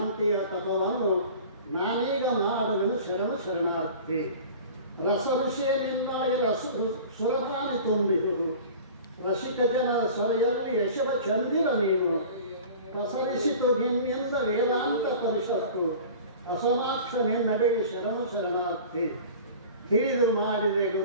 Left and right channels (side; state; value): both; inverted; correlation -0.40